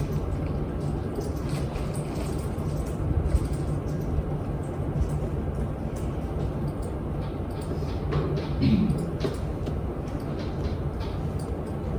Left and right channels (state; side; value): identical; both; correlation 1.00